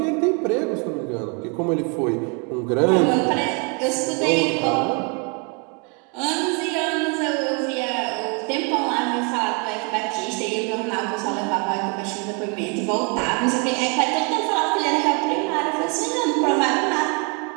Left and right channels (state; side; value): quieter; left; 34.7 dB